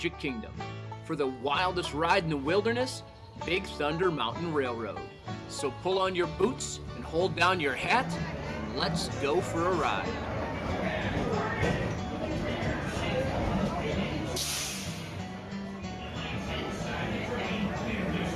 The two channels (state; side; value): identical; both; correlation 1.00